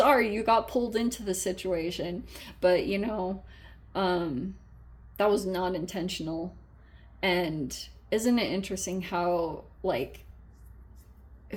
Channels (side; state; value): both; identical; correlation 1.00